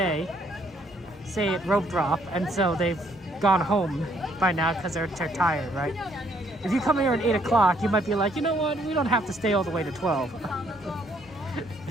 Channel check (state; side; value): normal; both; correlation 0.67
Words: say at rope drop, and so they've gone home by now because they're tired, right? If you come here at 8 o'clock, you might be like, you know what? We don't have to stay all the way to 12.